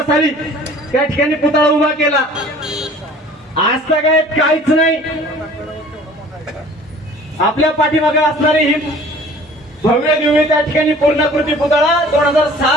साली त्या ठिकाणी पुतळा उभा केला. आज तर काय काहीच नाही. आपल्या पाठीमागे असणारी ही भव्य दिव्य त्या ठिकाणी पूर्णाकृती पुतळा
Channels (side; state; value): both; normal; correlation 0.49